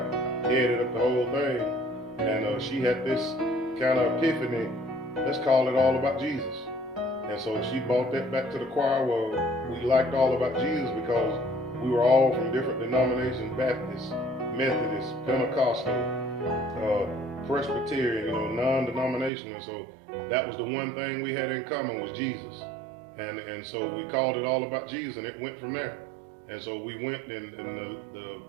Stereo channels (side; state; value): left; drops out; at 19.3 s